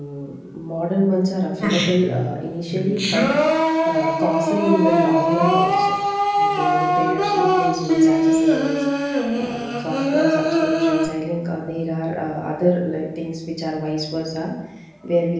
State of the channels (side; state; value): both; identical; correlation 1.00